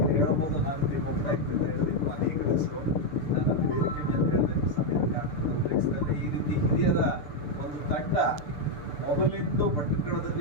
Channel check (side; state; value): right; late; 6.8 ms